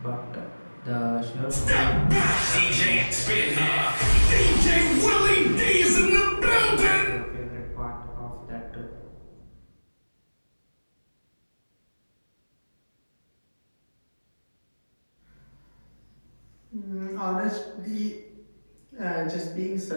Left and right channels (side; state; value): both; inverted; correlation -1.00